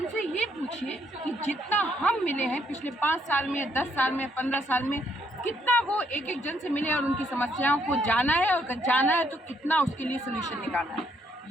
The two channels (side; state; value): both; normal; correlation 0.71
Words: ये पूछिए कि जितना हम मिले हैं पिछले 5 साल में, 10 साल में, 15 साल में, कितना वो एक एक जन से मिले और उनकी समस्याओं को जाना है, और अगर जाना है तो कितना उसके लिए सोल्यूशन निकालना है।